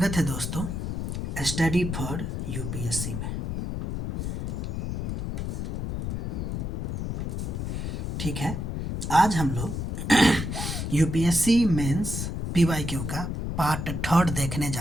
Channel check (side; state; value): left; noise; rumble, 3 dB below the sound